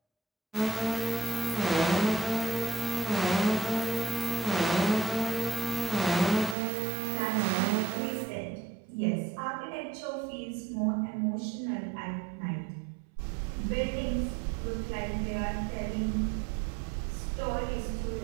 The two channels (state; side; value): drops out; left; at 6.6 s